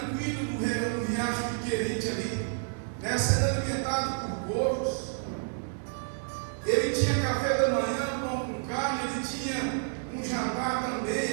no riacho de Querite ali, né, sendo alimentado por porcos, ele tinha café da manhã, pão com carne, ele tinha um jantar também,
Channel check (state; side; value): silent; left; digital silence